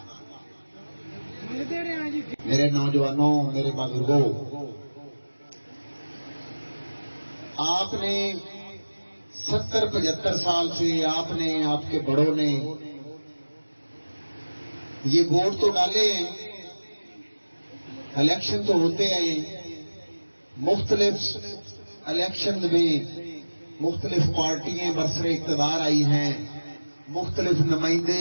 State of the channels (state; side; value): inverted; both; correlation -1.00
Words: मेरे नौजवानों, मेरे बुजुर्गों, आपने 70-75 साल से आपने, आपके बड़ों ने ये वोट तो डाले हैं। इलेक्शन तो होते हैं, मुख्तलिफ इलेक्शन में मुख्तलिफ पार्टियां बरसरे इक़्तिदार आई हैं, मुख्तलिफ नुमाइंदे